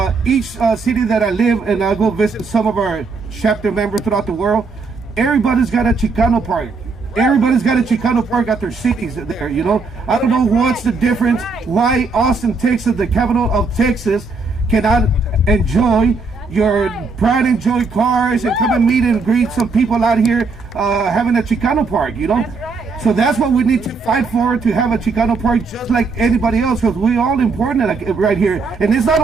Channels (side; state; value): left; quieter; 4.2 dB